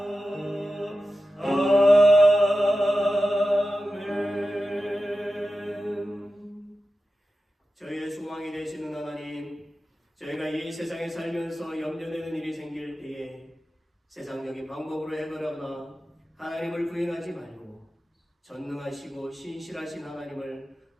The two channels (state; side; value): normal; both; correlation 0.93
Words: 아멘. 저희의 소망이 되시는 하나님, 저희가 이 세상에 살면서 염려되는 일이 생길 때에 세상적인 방법으로 해결하거나 하나님을 부인하지 말고 전능하시고 신실하신 하나님을